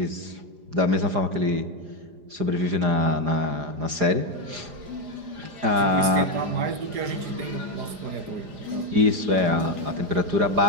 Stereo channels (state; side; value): late; left; 4.9 ms